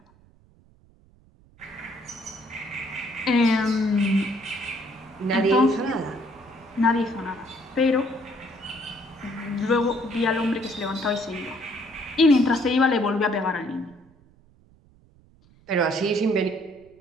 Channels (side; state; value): right; noise; rumble, 29 dB below the sound